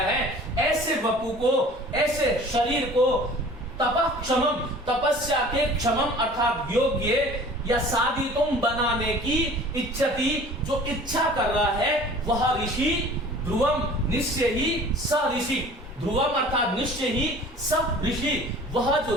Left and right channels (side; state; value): both; normal; correlation 0.46